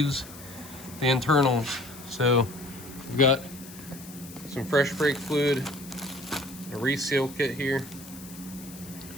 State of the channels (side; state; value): left; noise; hiss, 17 dB below the sound